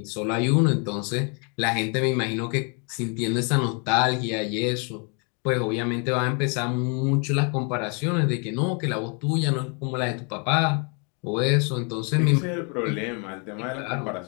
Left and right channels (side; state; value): right; quieter; 36.5 dB